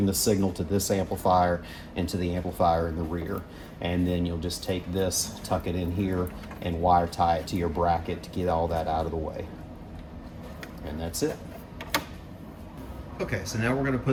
the signal to this amplifier and to the amplifier in the rear. And then you'll just take this, tuck it in here, and wire tie it to your bracket to get all that out of the way. And that's it. Okay, so now we're going to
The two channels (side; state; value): both; identical; correlation 1.00